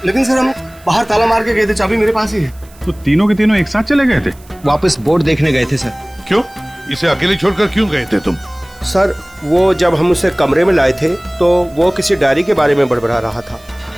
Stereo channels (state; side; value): noise; right; hiss, 26 dB below the sound